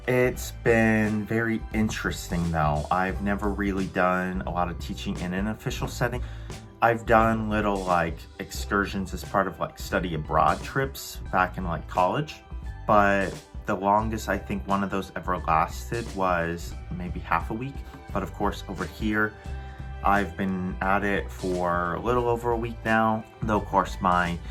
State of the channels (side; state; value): both; identical; correlation 1.00